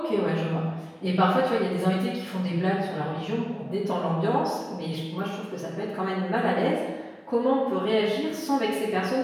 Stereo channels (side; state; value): both; identical; correlation 1.00